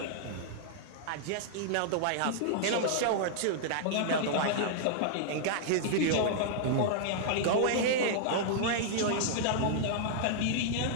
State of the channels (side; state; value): both; different; correlation -0.01